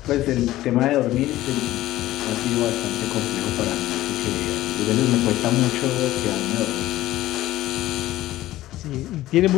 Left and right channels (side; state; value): right; quieter; 15.5 dB